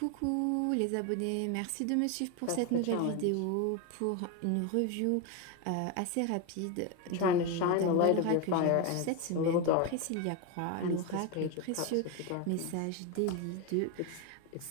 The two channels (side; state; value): both; different; correlation 0.02